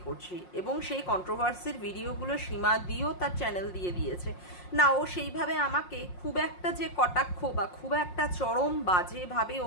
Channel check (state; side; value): late; right; 5.6 ms